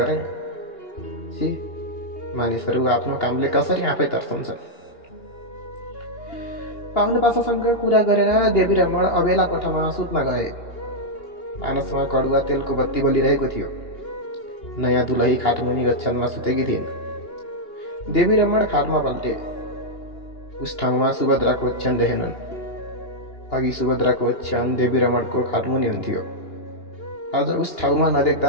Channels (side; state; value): right; late; 2.8 ms